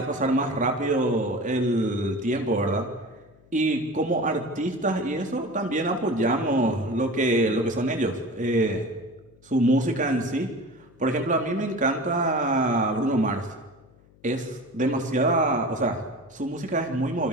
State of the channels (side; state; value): left; noise; hum, 28 dB below the sound